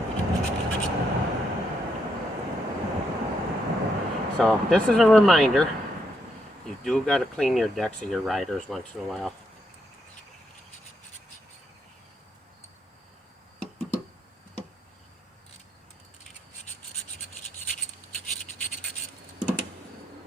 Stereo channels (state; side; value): normal; both; correlation 0.78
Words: So this is a reminder, you do got to clean your decks of your riders once in a while.